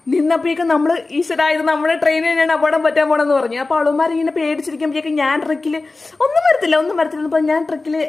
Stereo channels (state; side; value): quieter; right; 3.5 dB